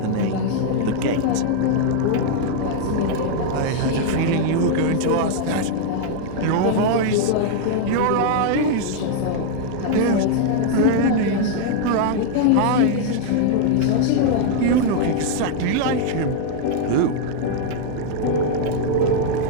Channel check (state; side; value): different; both; correlation 0.00